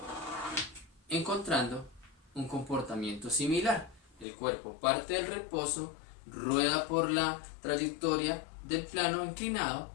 encontrando un comportamiento similar. El cuerpo parte del reposo, rueda por la trayectoria del plano inclinado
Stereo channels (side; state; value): right; drops out; at 4.2 s